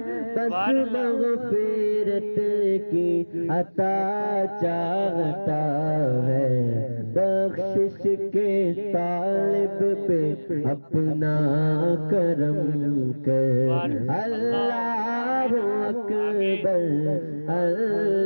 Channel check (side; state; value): both; inverted; correlation -1.00